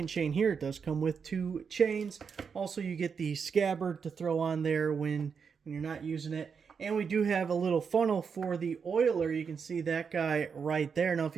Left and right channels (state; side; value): quieter; left; 6.1 dB